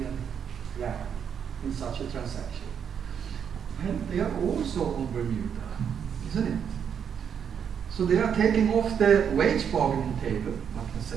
rand in such a transaction? Well, they are also on Bermuda, isn't it? So they are taking off the wage bargaining table, I can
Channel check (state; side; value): quieter; left; 7.8 dB